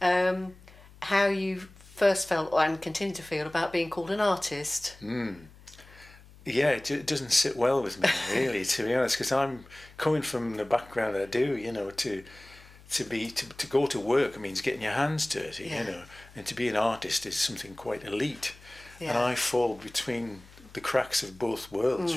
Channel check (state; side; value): noise; left; hum, 22 dB below the sound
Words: How you first felt and continue to feel about being called an artist. Yeah, it doesn't sit well with me, really, to be honest, because I'm coming from the background I do, you know, to go to work means getting your hands dirty, you know, and to be an artist is something quite elite. Yeah. And I fall between the cracks of both